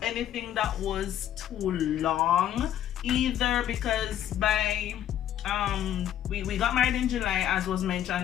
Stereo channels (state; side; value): quieter; right; 11.1 dB